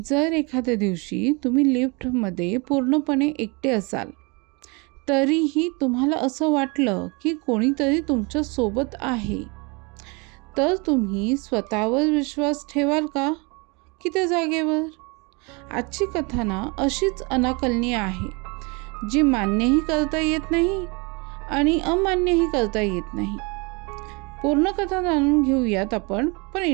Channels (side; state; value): left; quieter; 29.5 dB